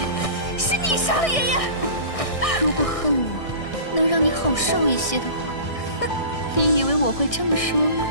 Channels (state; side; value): late; right; 1.6 ms